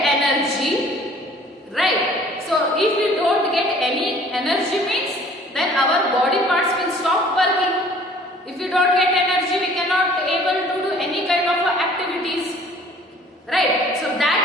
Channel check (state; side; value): normal; both; correlation 0.53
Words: right? So if we don't get any energy means, then our body parts will stop working. If we don't get energy, we cannot able to do any kind of activities, right? So that